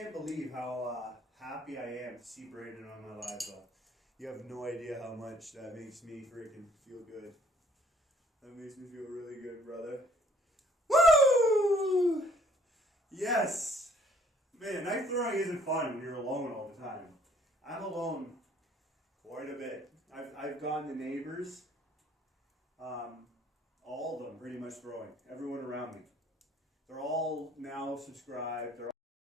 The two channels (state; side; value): normal; both; correlation 0.60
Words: believe how happy I am to see Brandon on my live though. You have no idea how much that makes me freaking feel good. That makes me feel really good, brother. Woo! Yes! Man, knife throwing isn't fun when you're alone all the time. I'm alone quite a bit. I've gotten the neighbors, all of them pretty much throwing. Everyone around me. They're all now subscribed. They're